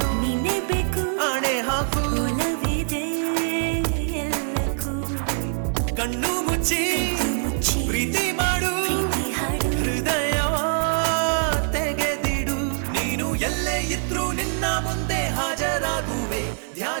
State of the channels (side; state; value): left; silent; 63 dB below the other